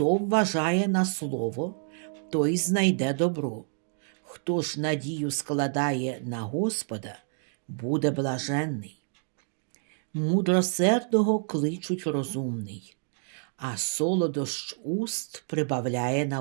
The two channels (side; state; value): left; silent; 59 dB below the other